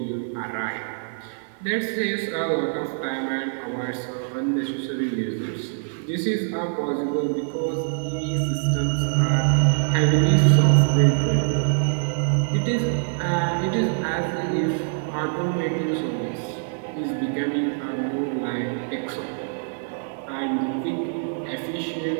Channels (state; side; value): silent; left; digital silence